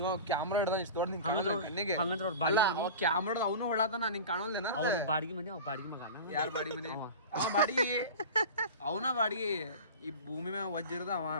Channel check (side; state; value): both; inverted; correlation -0.33